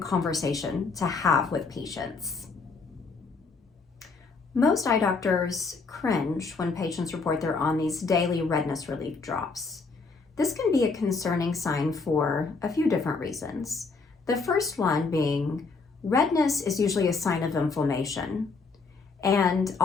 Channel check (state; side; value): quieter; right; 4.3 dB